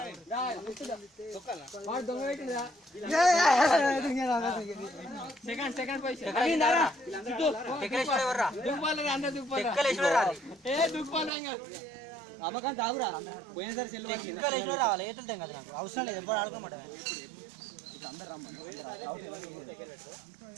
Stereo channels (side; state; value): left; drops out; at 11.3 s